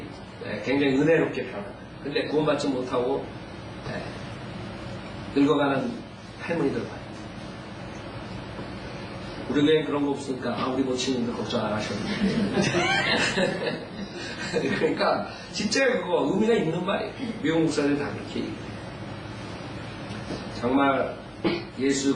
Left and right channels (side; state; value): both; identical; correlation 1.00